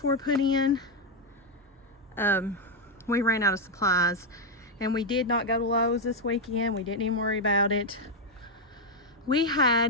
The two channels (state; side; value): normal; both; correlation 0.02